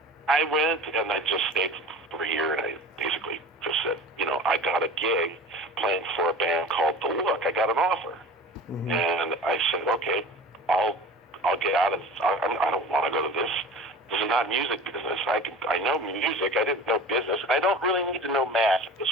I went, and I just stayed for a year, and I basically just said, I got a gig playing for a band called The Look. I got an offer. Mm-hmm. And I said, okay, I'll get out of, I don't want to go to this. This is not music business. I know music. I didn't know business. I don't really need to know math at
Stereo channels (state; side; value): normal; both; correlation 0.38